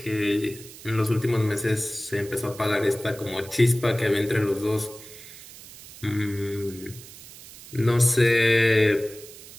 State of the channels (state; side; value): noise; right; hiss, 17 dB below the sound